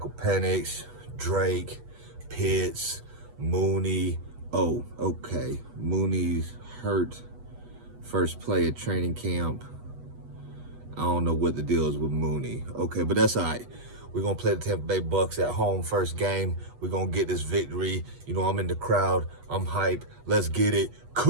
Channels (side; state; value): left; late; 8.2 ms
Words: Penix, Drake, Pitts, Mooney. Oh, okay. Mooney's hurt first play at training camp. I don't know what the deal is with Mooney. Okay, but that's all right. We're going to play the Tampa Bay Bucks at home first game. We're going to get this victory. You know, I'm in the crowd. I'm hype. Let's get it.